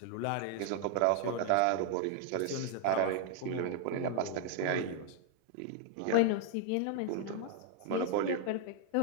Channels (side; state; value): both; different; correlation 0.00